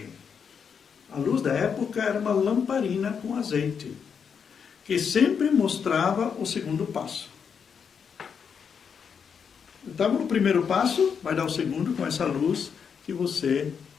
A luz da época era uma lamparina com azeite, que sempre mostrava o segundo passo. Estava no primeiro passo, vai dar o segundo com essa luz que você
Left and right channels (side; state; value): right; quieter; 6.7 dB